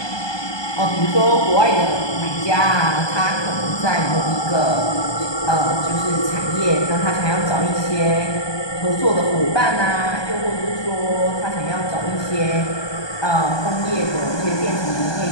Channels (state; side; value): late; right; 1.2 ms